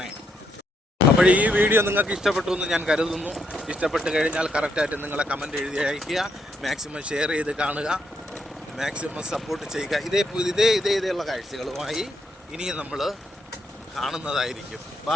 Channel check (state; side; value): normal; both; correlation 0.77